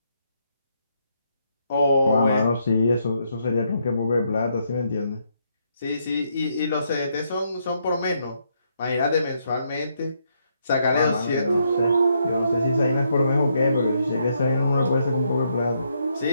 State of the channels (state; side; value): inverted; both; correlation -0.76